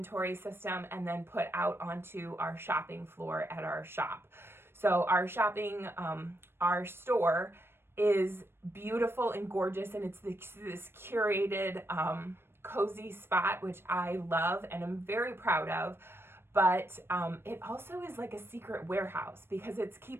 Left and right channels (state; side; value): late; left; 0.11 ms